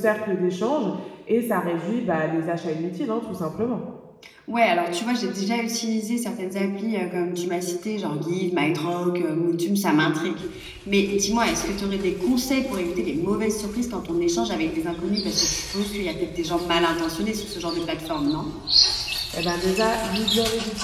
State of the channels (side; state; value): both; identical; correlation 1.00